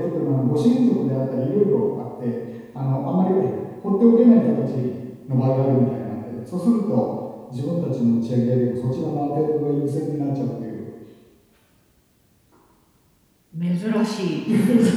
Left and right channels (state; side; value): identical; both; correlation 1.00